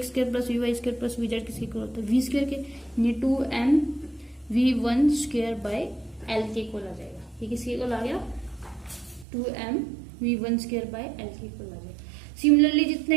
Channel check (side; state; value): left; drops out; at 9.2 s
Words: square plus v y square plus v z किसके इक्वल होता है, वी स्क्वायर के, यानी 2m v1 square by l के इक्वल आ जाएगा। ये किसके इक्वल आ गया, 2m v1 square by l के इक्वल आ जाएगा। सिमिलरली